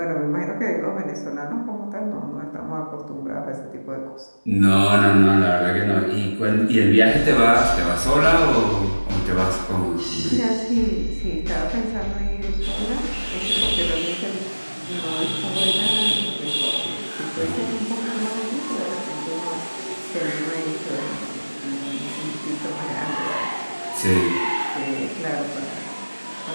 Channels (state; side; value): inverted; both; correlation -1.00